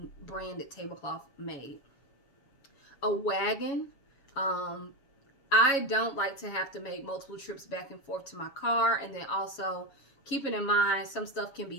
branded tablecloth made. A wagon. I don't like to have to make multiple trips back and forth to my car, and then also keeping in mind some stuff can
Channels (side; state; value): right; late; 7.2 ms